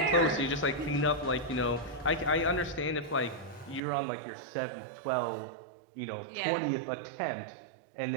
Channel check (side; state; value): left; drops out; at 3.8 s